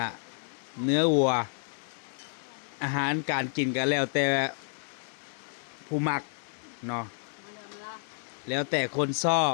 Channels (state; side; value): silent; right; 58 dB below the other